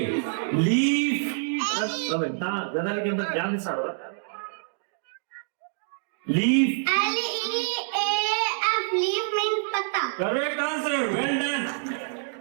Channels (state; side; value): silent; left; digital silence